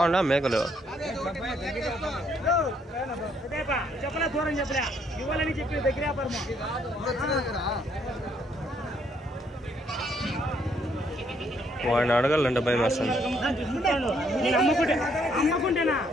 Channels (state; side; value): normal; both; correlation 0.69